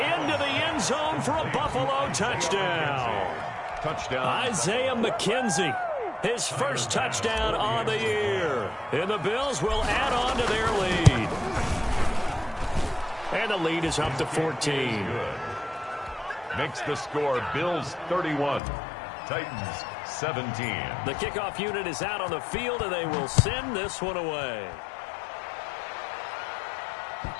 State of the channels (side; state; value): right; drops out; at 18.6 s